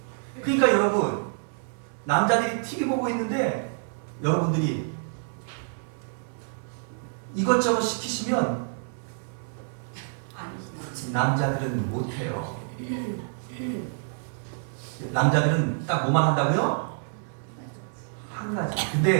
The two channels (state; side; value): silent; left; digital silence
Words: 그러니까 여러분, 남자들이 TV 보고 있는데 여러분들이 이것저것 시키시면 남자들은 못해요. 남자들은 딱 뭐만 한다고요? 한 가지.